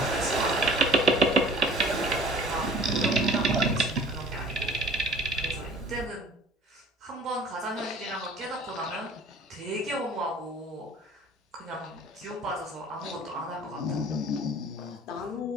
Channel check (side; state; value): both; normal; correlation 0.49